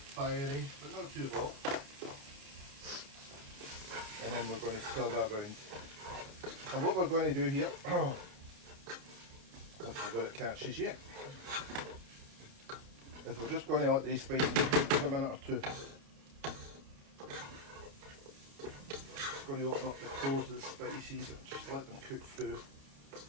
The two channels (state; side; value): late; left; 29 ms